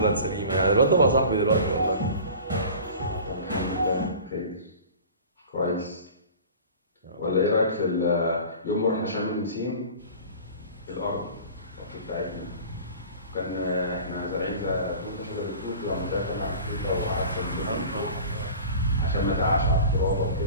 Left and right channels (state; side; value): inverted; both; correlation -0.40